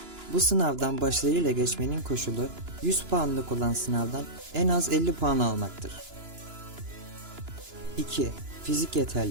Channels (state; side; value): late; left; 2.9 ms